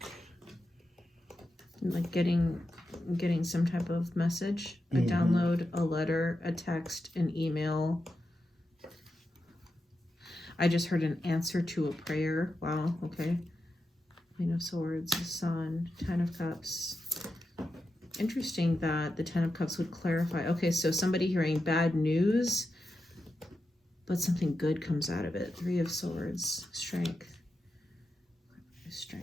Like getting some type of message, a download, a letter, a text, an email. I just heard an answer to a prayer. Wow, okay. Queen of Swords, the Sun, Ten of Cups. Interesting that the Ten of Cups would clarify. Okay, so somebody hearing bad news, but something good comes out of it. Three of Swords, Strength.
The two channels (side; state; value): both; normal; correlation 0.89